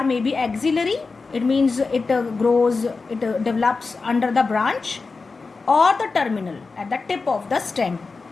may be axillary, it means it develops under the branch, or the terminal, at the tip of the stem.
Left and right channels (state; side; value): quieter; right; 4.2 dB